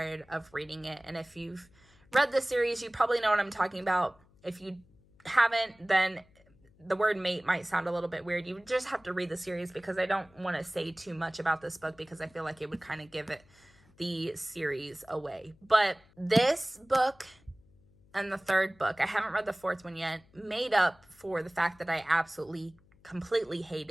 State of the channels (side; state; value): left; noise; hum, 29 dB below the sound